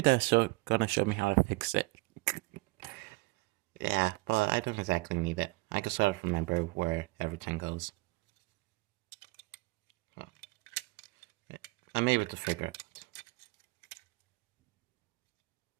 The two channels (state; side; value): quieter; left; 24.3 dB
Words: gonna show me how to fix it. Yeah, but I don't exactly need it. I can sort of remember where everything goes. Oh, I'm able to figure it out.